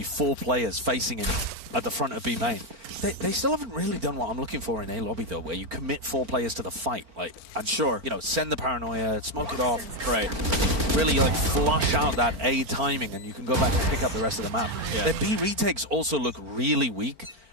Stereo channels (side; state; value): left; late; 4.4 ms